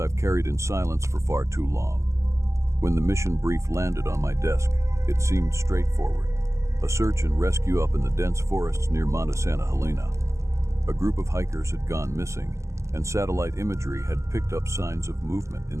carried in silence for far too long. When the mission brief landed on my desk, it seemed straightforward. A search and rescue up in the dense forests near Monte Santa Helena. A group of hikers had gone missing, and satellite imagery had picked up signs of movement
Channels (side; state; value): left; late; 0.14 ms